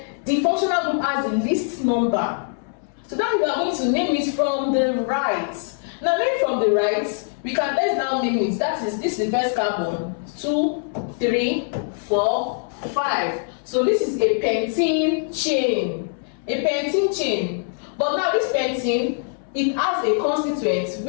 the functional group has the least number. So that means we are going to name it from the right. Now, name from the right, let's now name it. This is the first carbon. 2, 3, 4, 5. So this is a pentene chain. A pentene chain. But now this pentene, it has a constituent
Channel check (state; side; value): silent; right; 64 dB below the other